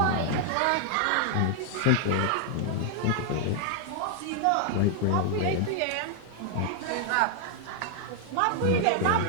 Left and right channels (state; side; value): different; both; correlation 0.00